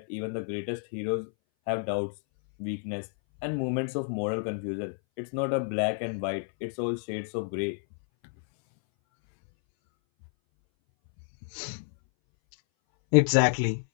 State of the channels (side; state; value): right; silent; 58 dB below the other